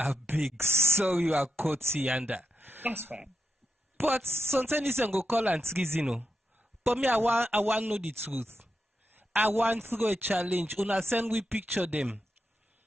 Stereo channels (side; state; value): both; normal; correlation 0.86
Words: big so you are Kotianda. That's fine. But sometimes you go call and Trizino. But me, I want know the truth. I want through a challenge. Una send we picture them.